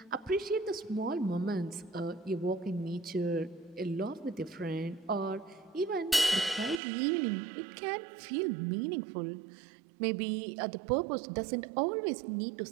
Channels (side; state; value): left; drops out; at 6.8 s